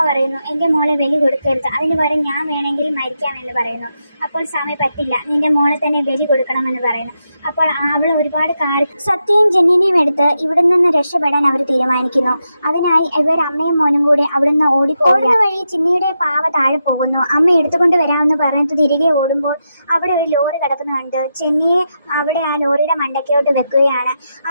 പറയുന്നു, എൻ്റെ മോളെ ബലി കൊടുക്കരുത്, അതിന് പകരം ഞാൻ വേണമെങ്കിൽ മരിക്കാമെന്ന് പറയുന്നു. അപ്പോൾ സ്വാമി, പറ്റില്ല, നിന്റെ മോളെ തന്നെ ബലി കൊടുക്കണമെന്ന് പറയുന്നു. അപ്പോൾ അവൾ ഒരുപാട് സത്യയും ജെന്നിനെയും എടുത്ത് ഇവിടെ നിന്ന് രക്ഷപ്പെടാൻ അവർ തീരുമാനിക്കുന്നു. അതിനായി ഇവർ അമ്മയും മോനും കൂടി അവിടുന്ന് ഓടുന്ന വഴി ചിന്നിയുടെ പാവ താഴെ പോകുന്നു. അമ്മ എടുത്തുകൊണ്ട് വരാമെന്ന് പറഞ്ഞിട്ട് തിരികെ ഓടുമ്പോൾ അവിടെ ഒരു ലോറി കിടക്കുന്ന കണ്ട് ചെന്നിയെ അവിടെ ആ ലോറിയുടെ മണ്ടയ്ക്കോട്ട് വെക്കുകയാണ്.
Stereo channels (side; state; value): both; inverted; correlation -0.86